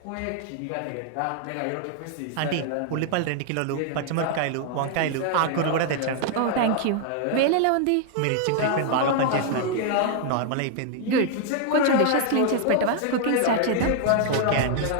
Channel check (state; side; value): different; both; correlation 0.00